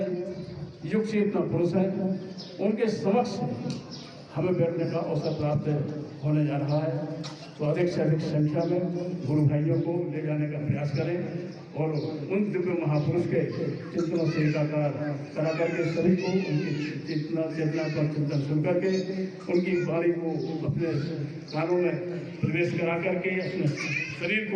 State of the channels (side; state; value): both; identical; correlation 1.00